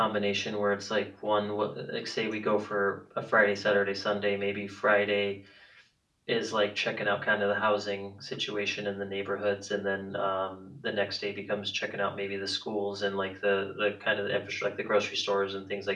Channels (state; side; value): identical; both; correlation 1.00